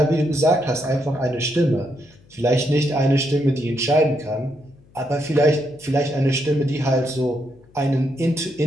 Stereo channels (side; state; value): left; noise; hum, 28 dB below the sound